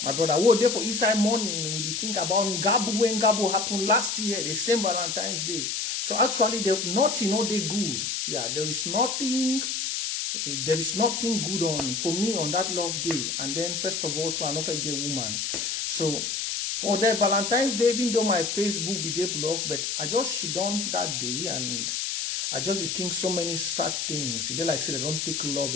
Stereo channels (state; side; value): noise; left; hiss, 1 dB below the sound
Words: brother, what day for Easter morning, we think about Ngabo when Ngabo happened last year, the same Valentine's Day. So actually, nothing, they good. Yeah, there is nothing good on, for me on that love day. And then, first of all, to another gay woman. So, for the Valentine's Day, even though my Facebook be day blocked, but I just shit on that day and I just think so many sad things. They like say they don't take love